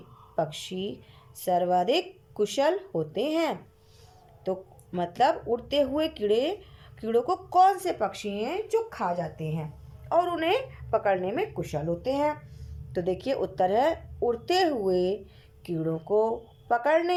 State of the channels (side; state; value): both; identical; correlation 1.00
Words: पक्षी सर्वाधिक कुशल होते हैं? तो मतलब उड़ते हुए कीड़ों को कौन से पक्षी हैं जो खा जाते हैं और उन्हें पकड़ने में कुशल होते हैं? तो देखिए, उत्तर है, उड़ते हुए कीड़ों को